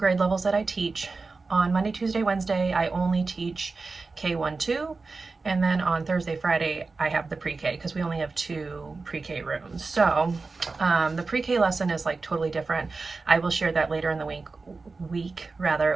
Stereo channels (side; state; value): left; quieter; 4.0 dB